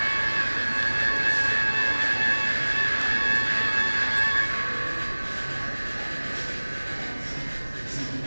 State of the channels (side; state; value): both; inverted; correlation -1.00